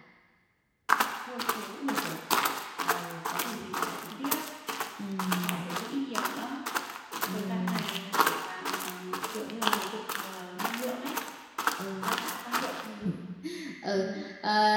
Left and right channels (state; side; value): identical; both; correlation 1.00